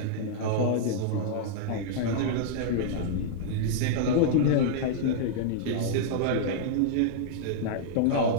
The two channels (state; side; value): different; both; correlation -0.02